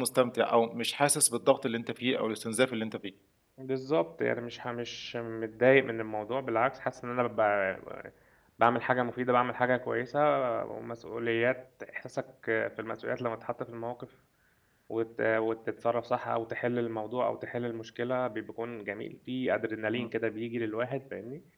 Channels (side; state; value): both; identical; correlation 1.00